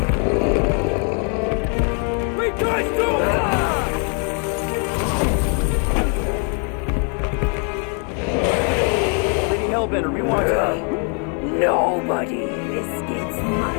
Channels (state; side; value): quieter; right; 40.0 dB